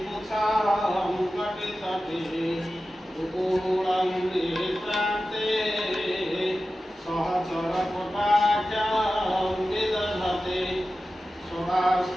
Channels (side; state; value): both; normal; correlation 0.94